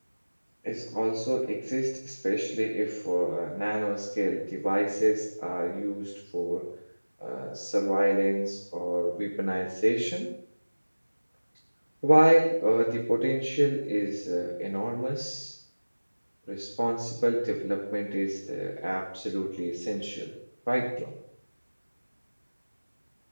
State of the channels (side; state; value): both; inverted; correlation -1.00